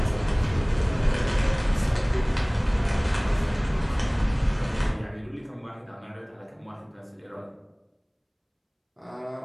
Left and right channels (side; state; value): both; identical; correlation 1.00